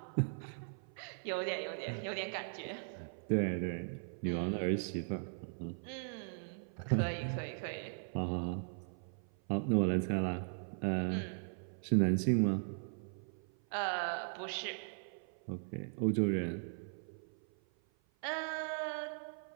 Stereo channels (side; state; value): left; silent; 52 dB below the other